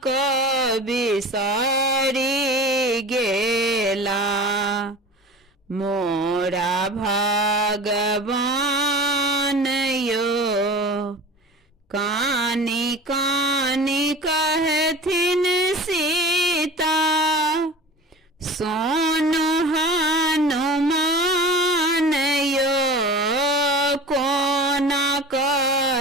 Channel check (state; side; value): normal; both; correlation 0.37